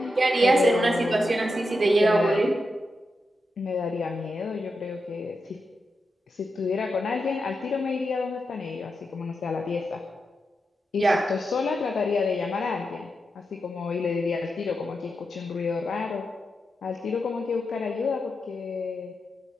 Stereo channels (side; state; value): both; normal; correlation 0.87